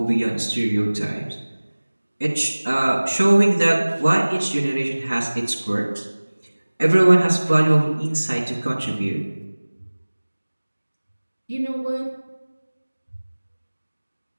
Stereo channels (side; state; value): both; inverted; correlation -1.00